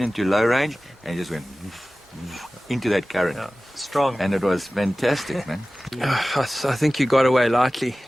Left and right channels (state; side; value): normal; both; correlation 0.97